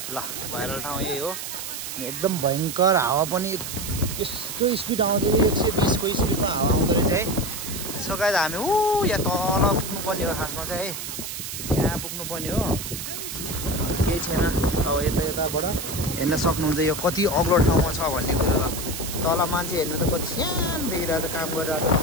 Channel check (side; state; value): right; noise; hiss, 7 dB below the sound